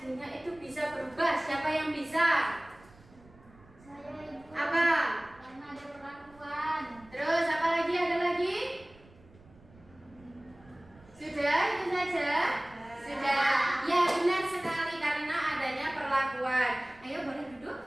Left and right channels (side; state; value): right; noise; rumble, 26 dB below the sound